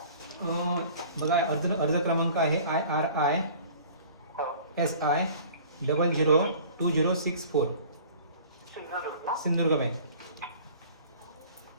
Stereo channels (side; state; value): both; inverted; correlation -0.47